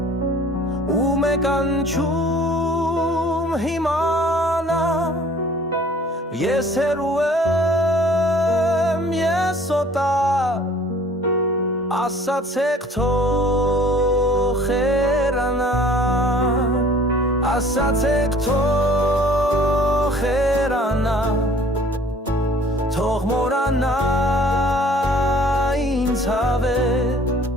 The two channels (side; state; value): both; normal; correlation 0.52